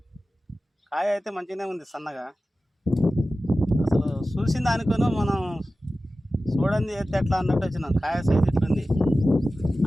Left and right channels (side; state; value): both; normal; correlation 0.95